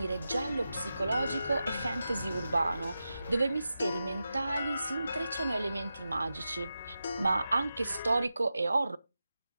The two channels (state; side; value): inverted; both; correlation -0.91